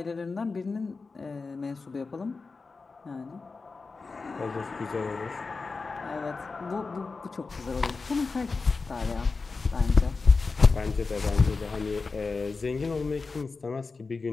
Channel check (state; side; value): quieter; right; 4.2 dB